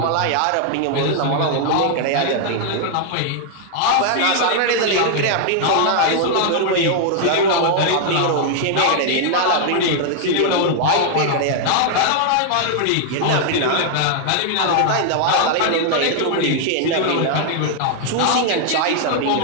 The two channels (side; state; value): both; different; correlation 0.00